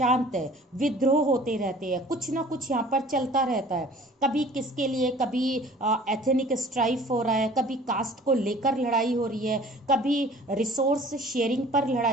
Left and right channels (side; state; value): both; normal; correlation 0.49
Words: है। विद्रोह होते रहते हैं, कुछ ना कुछ यहाँ पर चलता रहता है। कभी किसके लिए, कभी एथनिक स्ट्राइफ हो रहा है, कभी कास्ट को लेकर लड़ाई हो रही है, कभी रिसोर्स शेयरिंग पर